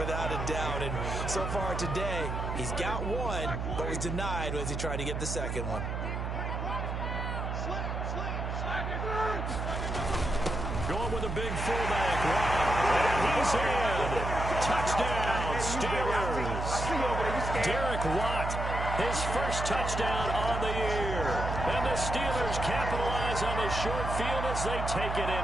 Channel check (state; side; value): noise; right; hum, 3 dB below the sound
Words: a doubt. And so far today, he's got one, but was denied as he tried to get the second one. Going with a big fullback. And he's in. Touchdown, Steelers. Derek Watt his first touchdown on the year. And the Steelers capitalize on the short field as they take it